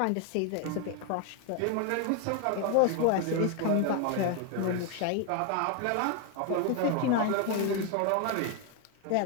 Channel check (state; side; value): different; both; correlation 0.01